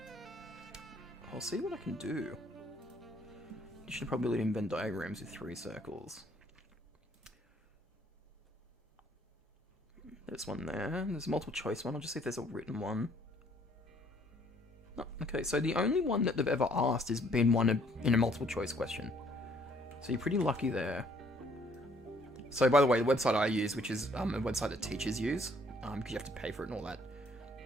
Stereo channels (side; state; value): both; normal; correlation 0.63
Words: I'll see what I can do. Addition of probability in Venn diagrams with 3 circles. There's one there. There's a multiple choice one. I'll just see if there's a written one. Oh, okay, so the only one that they've ever asked has been one in a multiple choice question. So you're pretty lucky there. So by the way, the website I use, which is a website that teachers use, because you have to pay for it and all that,